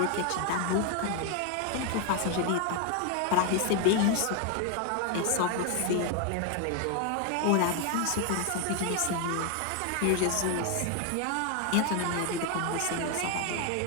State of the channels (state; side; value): different; both; correlation 0.01